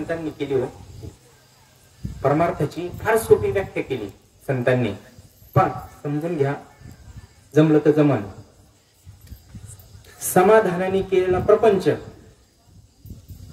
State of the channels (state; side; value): identical; both; correlation 1.00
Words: केली हो. परमार्थाची फार सोपी व्याख्या केली संतांनी. पण समजून घ्या, जमलं तर जमन. समाधानाने केलेला प्रपंच,